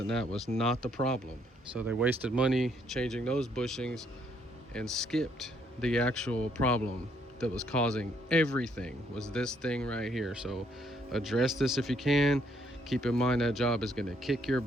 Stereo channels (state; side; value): normal; both; correlation 0.70